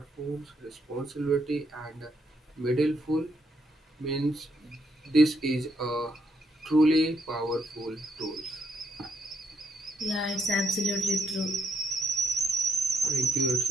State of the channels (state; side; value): normal; both; correlation 0.75